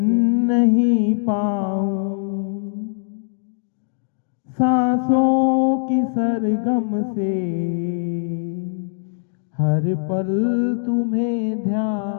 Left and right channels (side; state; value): right; silent; digital silence